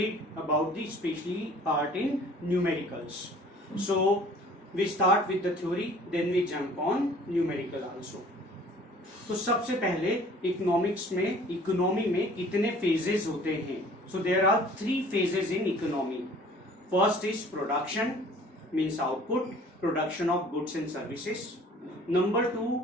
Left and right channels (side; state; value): both; normal; correlation 0.51